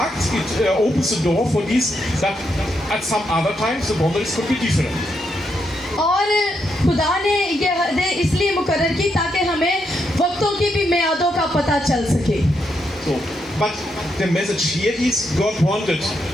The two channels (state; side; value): normal; both; correlation 0.80